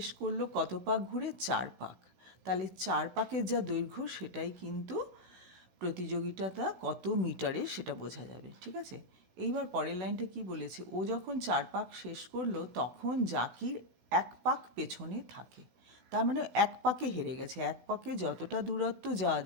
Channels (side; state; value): left; late; 16 ms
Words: করলো কত পাক ঘুরে? 4 পাক। তাহলে 4 পাকের যা দৈর্ঘ্য সেটাই কিন্তু প্রতিযোগিতাটা কত মিটারে সেটা বোঝা যাবে, ঠিক আছে? এইবার পরের লাইনটা কি বলেছে? ও যখন 4 পাক শেষ করলো তখন জাকির 1 পাক পেছনে থাকে, তার মানে 1 পাকে হেরে গেছে। 1 পাকে যতটা দূরত্ব যাওয়া